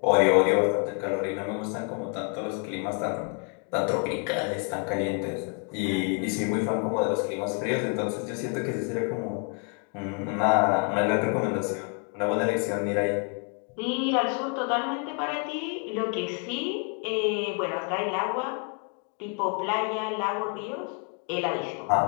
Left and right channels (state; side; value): quieter; right; 39.0 dB